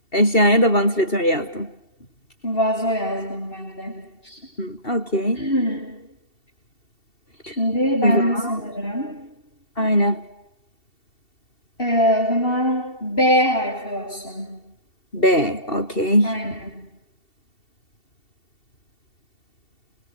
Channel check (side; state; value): right; late; 2.7 ms